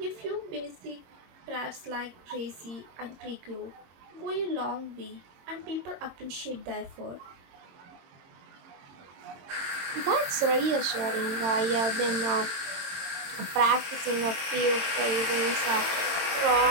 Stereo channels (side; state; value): left; late; 22 ms